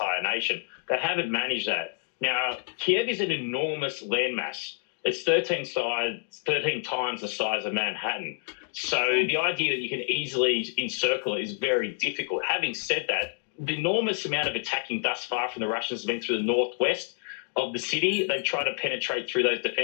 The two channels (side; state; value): right; silent; 59 dB below the other